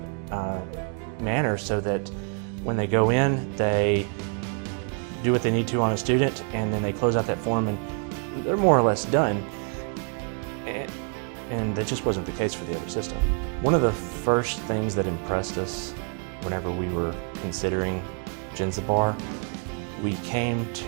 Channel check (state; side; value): quieter; left; 38.8 dB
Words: manner, so that when they go in, they do what they need to on a student, and then they close out that form and they're more or less done. And that just wasn't the case for the other system. One of the first things that impressed us whenever we were considering Jenzabar, we came